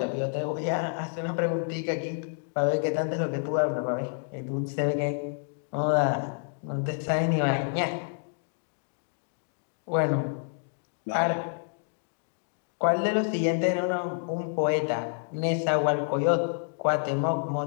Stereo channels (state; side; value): silent; right; digital silence